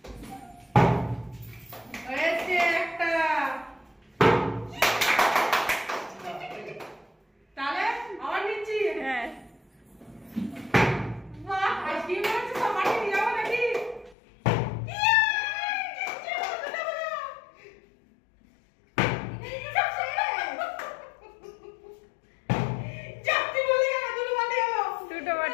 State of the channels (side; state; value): right; drops out; at 14.2 s